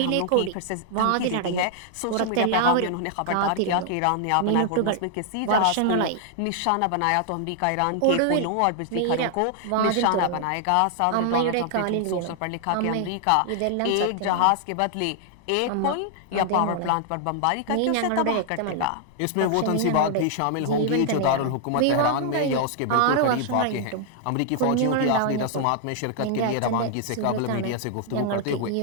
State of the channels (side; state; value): both; different; correlation 0.00